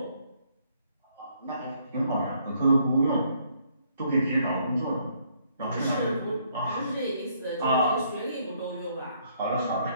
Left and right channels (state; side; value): inverted; both; correlation -0.68